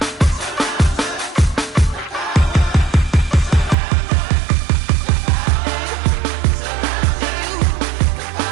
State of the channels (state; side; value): drops out; left; at 3.8 s